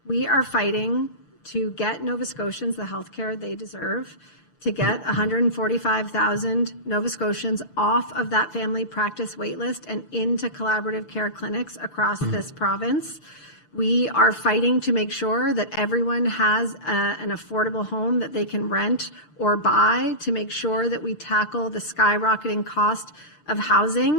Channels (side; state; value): right; late; 6.7 ms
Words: We are fighting to get Nova Scotians the health care they deserve, to get 145,000 Nova Scotians off of that family practice waitlist and into collaborative care clinics across this province. We are fighting to make sure that everyone has an affordable home that they can rent or buy, to make sure that we tackle the skyrocketing cost of